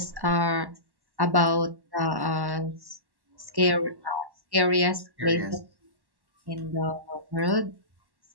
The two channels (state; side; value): late; left; 1.1 ms